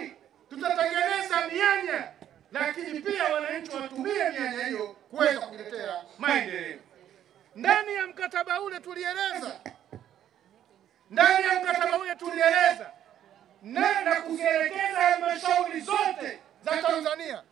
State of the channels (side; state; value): left; quieter; 10.8 dB